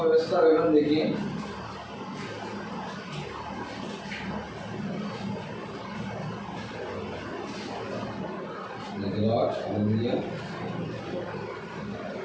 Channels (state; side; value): identical; both; correlation 1.00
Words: व्यवस्था विवरण देखिए।